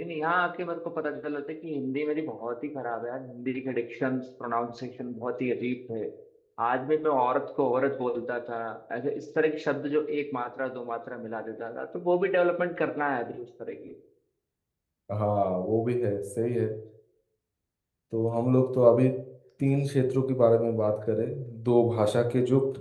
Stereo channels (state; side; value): identical; both; correlation 1.00